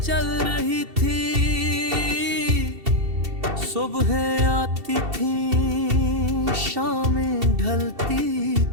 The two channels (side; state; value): left; late; 2.7 ms